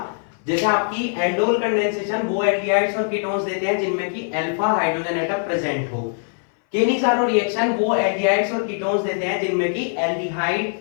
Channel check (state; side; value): silent; right; 61 dB below the other